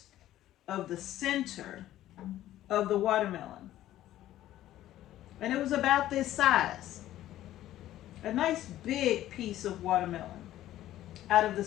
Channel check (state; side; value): quieter; right; 13.6 dB